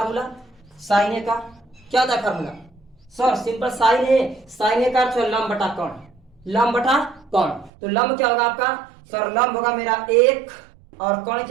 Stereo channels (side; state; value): left; drops out; at 7.7 s